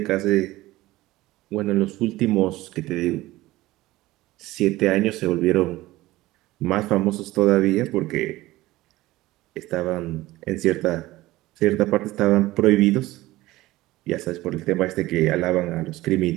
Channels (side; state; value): left; quieter; 17.9 dB